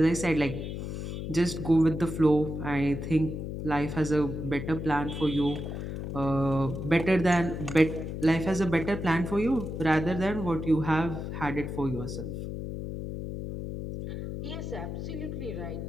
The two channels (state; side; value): noise; left; hum, 6 dB below the sound